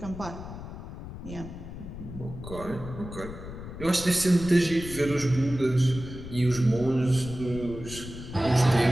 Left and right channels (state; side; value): noise; left; rumble, 11 dB below the sound